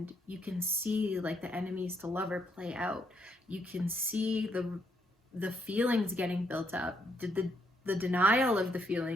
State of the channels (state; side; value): normal; both; correlation 0.74